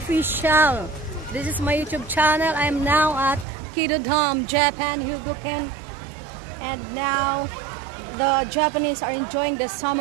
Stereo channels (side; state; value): left; drops out; at 3.5 s